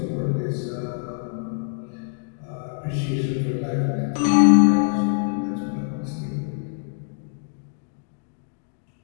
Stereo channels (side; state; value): right; silent; digital silence